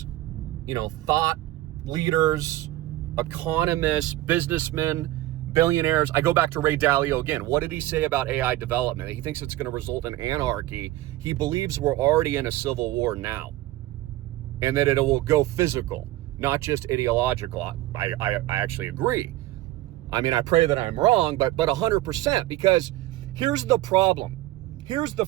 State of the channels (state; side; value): quieter; left; 16.3 dB